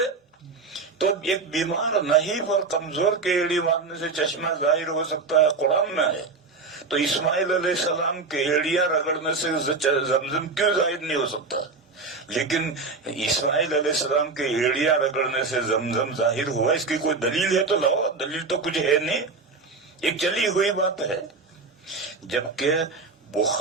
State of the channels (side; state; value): left; quieter; 4.1 dB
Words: تو ایک بیمار نحیف اور کمزور کے ایڑی مارنے سے چشمہ ظاہر ہو سکتا ہے، قرآن میں ہے. تو اسماعیل علیہ السلام کے ایڑیاں رگڑنے سے زمزم کیوں ظاہر نہیں ہو سکتا؟ لیکن اسماعیل علیہ السلام کے ایڑیاں رگڑنے سے زمزم ظاہر ہوا، اس کی کوئی دلیل ہے تو لاؤ. دلیل تو کچھ ہے نہیں، ایک چلی ہوئی بات ہے. جبکہ